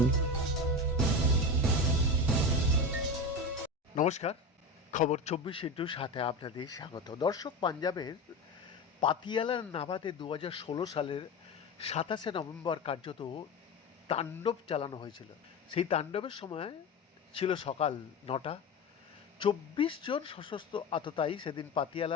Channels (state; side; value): normal; both; correlation 0.24